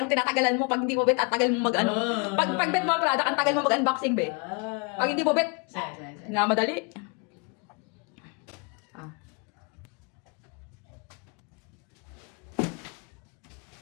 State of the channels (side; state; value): right; quieter; 31.4 dB